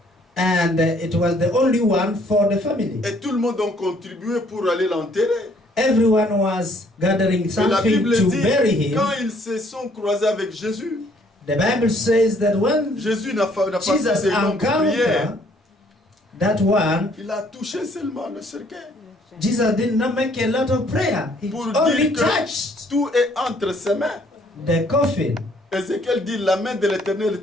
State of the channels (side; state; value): both; normal; correlation 0.63